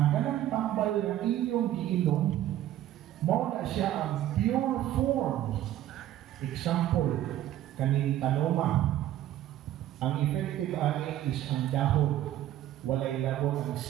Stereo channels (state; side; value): quieter; left; 12.8 dB